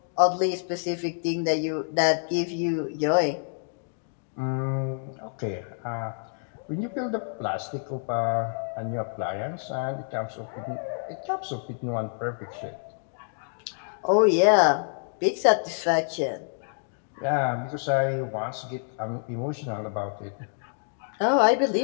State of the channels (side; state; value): right; silent; digital silence